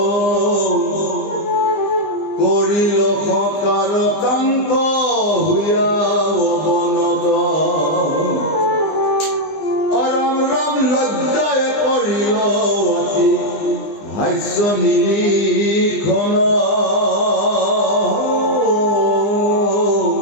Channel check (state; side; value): late; right; 20 ms